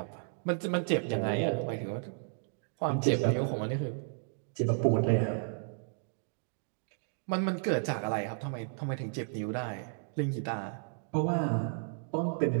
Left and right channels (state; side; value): silent; left; digital silence